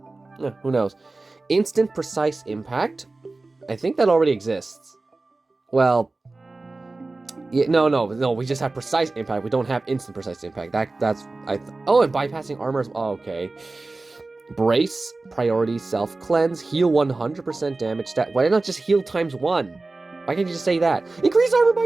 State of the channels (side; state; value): left; quieter; 3.3 dB